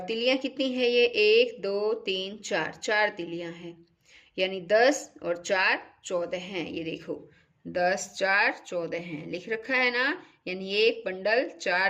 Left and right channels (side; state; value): both; identical; correlation 1.00